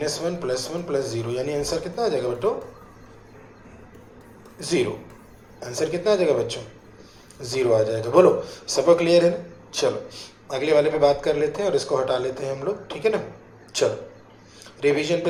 प्लस 1 प्लस 0, यानी आंसर कितना आ जाएगा बच्चों 0। आंसर कितना आ जाएगा बच्चों 0 आ जाएगा। बोलो सबको क्लियर है ना। चलो अगले वाले पे बात कर लेते हैं और इसको हटा लेते हैं हम लोग, ठीक है ना। चलो रिवीजन पे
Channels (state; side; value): identical; both; correlation 1.00